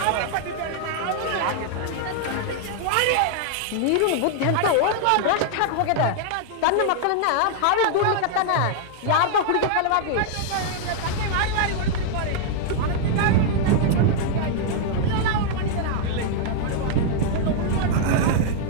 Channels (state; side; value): different; both; correlation -0.01